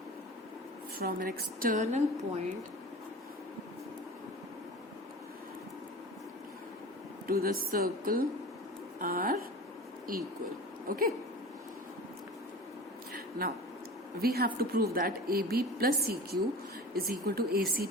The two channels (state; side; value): normal; both; correlation 0.36